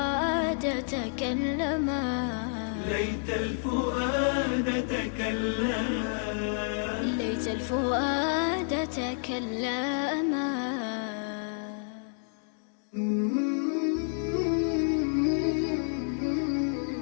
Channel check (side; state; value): right; silent; digital silence